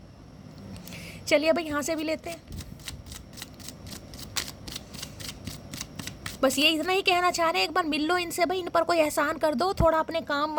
चलिए भाई यहाँ से भी लेते हैं। बस ये इतना ही कहना चाह रहे हैं, एक बार मिल लो इनसे भाई, इन पर कोई एहसान कर दो थोड़ा, अपने काम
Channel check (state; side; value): identical; both; correlation 1.00